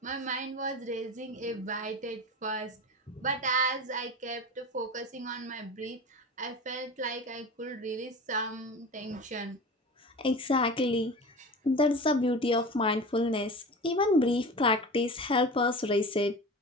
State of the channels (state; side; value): normal; both; correlation 0.32